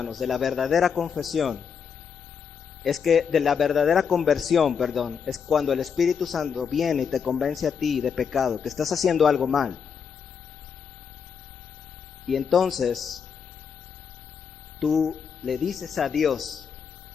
de la verdadera confesión es que de la verdadera conversión, es cuando el Espíritu Santo viene y te convence a ti de pecado, que estás haciendo algo mal. Y entonces tú le dices a Dios:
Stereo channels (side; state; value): right; quieter; 6.7 dB